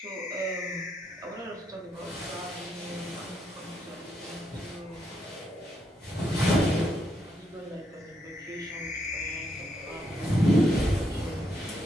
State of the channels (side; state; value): both; normal; correlation 0.78